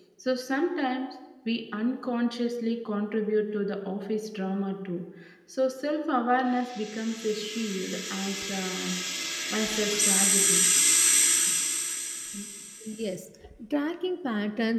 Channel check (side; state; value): both; identical; correlation 1.00